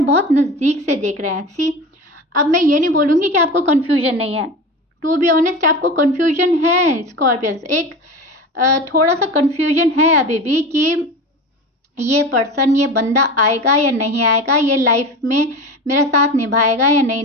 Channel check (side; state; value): both; normal; correlation 0.30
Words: बहुत नज़दीक से देख रहे हैं। सी, अब मैं ये नहीं बोलूँगी कि आपको कन्फ्यूजन नहीं है। टू बी ऑनेस्ट, आपको कन्फ्यूजन है स्कॉर्पियंस, एक थोड़ा सा कन्फ्यूजन है अभी भी कि ये पर्सन, ये बंदा आएगा या नहीं आएगा, ये लाइफ में मेरा साथ निभाएगा या नहीं